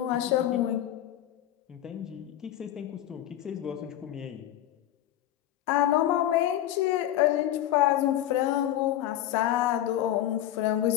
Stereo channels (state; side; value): quieter; right; 12.6 dB